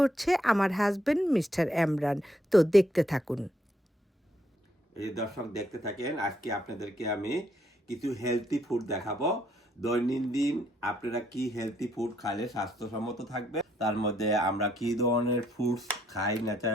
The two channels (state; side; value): normal; both; correlation 0.73